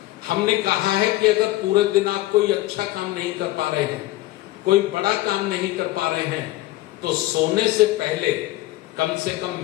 हमने कहा है कि अगर पूरे दिन आप कोई अच्छा काम नहीं कर पा रहे हैं, कोई बड़ा काम नहीं कर पा रहे हैं, तो सोने से पहले कम से कम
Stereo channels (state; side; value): quieter; right; 17.1 dB